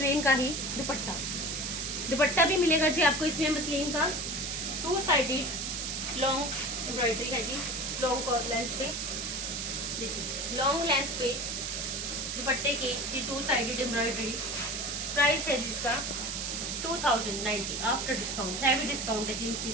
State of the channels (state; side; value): noise; right; hiss, 3 dB below the sound